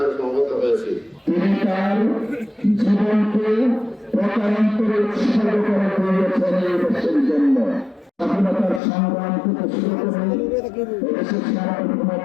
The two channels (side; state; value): right; drops out; at 8.8 s